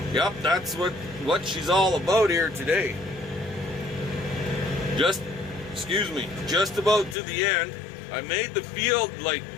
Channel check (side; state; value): right; drops out; at 7.2 s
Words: yep, that's what she's all about here today. Just about to the end. I made the field like